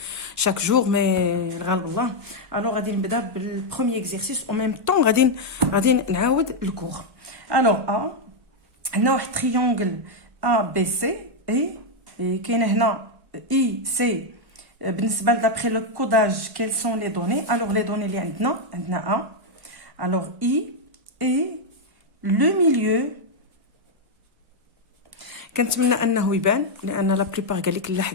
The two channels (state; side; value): late; left; 1.3 ms